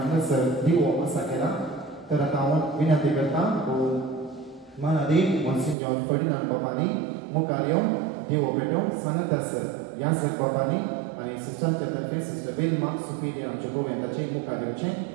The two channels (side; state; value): left; drops out; at 5.8 s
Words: दिवो आसा केला तर आता हांव विनंती करता महादेव मॉन्सिन्योर फर्डिनांड बाबांनी मुखार येवन दिवो पेटोवंक सांगत आसत ह्या सर बाबांनी आनी सिस्टरांच्या तर्फे सिस्टर वेल्मा सुपिरियर आमचे गोव्यांताचे मुखार